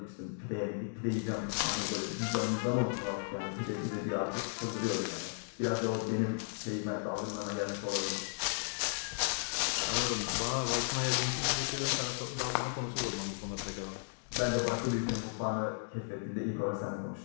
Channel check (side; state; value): right; silent; digital silence